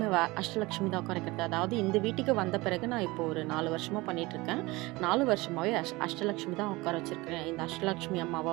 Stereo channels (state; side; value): quieter; left; 22.1 dB